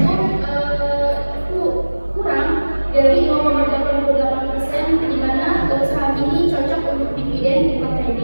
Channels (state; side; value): inverted; both; correlation -1.00